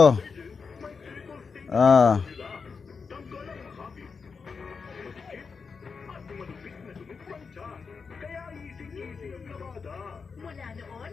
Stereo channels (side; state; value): right; quieter; 5.3 dB